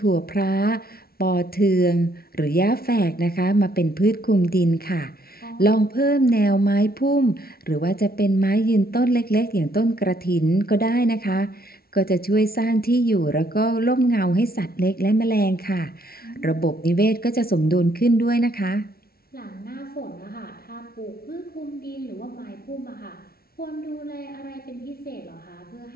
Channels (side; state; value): right; late; 0.44 ms